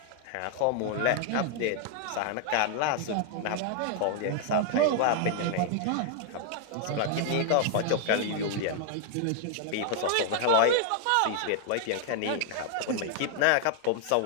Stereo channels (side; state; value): both; different; correlation 0.00